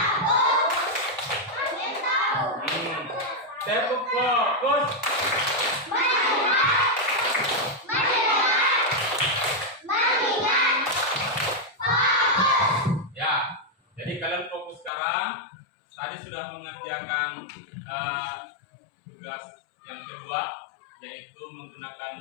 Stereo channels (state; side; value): drops out; right; at 14.9 s